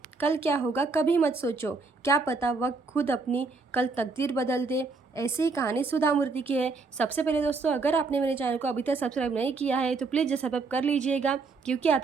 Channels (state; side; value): quieter; left; 4.1 dB